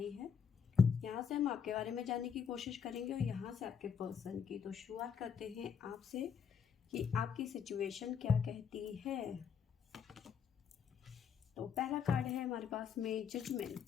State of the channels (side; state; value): right; quieter; 7.0 dB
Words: है। यहाँ से हम आपके बारे में जानने की कोशिश करेंगे और यहाँ से आपके पर्सन की। तो शुरुआत करते हैं आपसे कि आपकी सिचुएशन क्या कहती है। तो पहला कार्ड है हमारे पास में